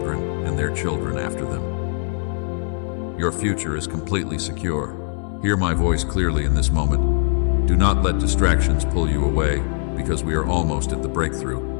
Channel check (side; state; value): right; silent; 64 dB below the other